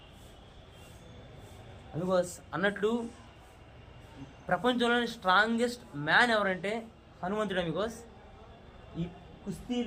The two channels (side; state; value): both; identical; correlation 1.00